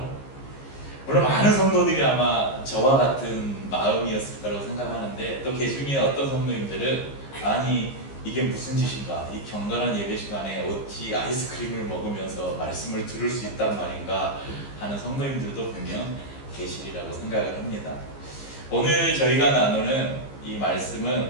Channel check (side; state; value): right; late; 15 ms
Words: 물론 많은 성도들이 아마 저와 같은 마음이었을 거라고 생각하는데 또 그 중에 어떤 성도님들은 아니 이게 무슨 짓인가, 이 경건한 예배 시간에 어찌 아이스크림을 먹으면서 말씀을 들을 수 있단 말인가 하는 성도님들도 분명 계시리라고 생각을 합니다. 오늘 저희가 나누는 이